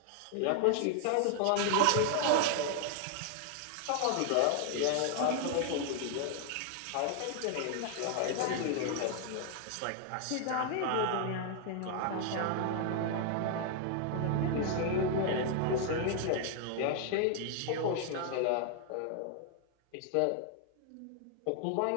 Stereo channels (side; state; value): both; different; correlation 0.00